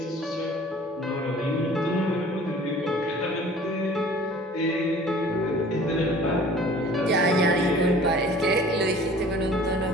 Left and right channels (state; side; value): normal; both; correlation 0.48